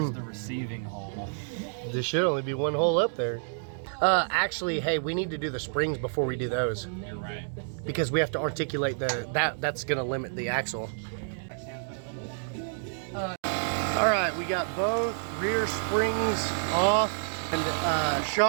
the receiving hole? There should only be one hole up there. Actually, hey, we need to do the springs before we do those. You're right. Because we have to articulate that's gonna limit the axle. All right, we got both rear springs off and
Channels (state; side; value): silent; left; digital silence